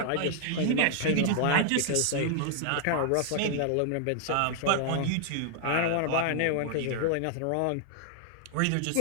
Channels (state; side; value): different; both; correlation 0.00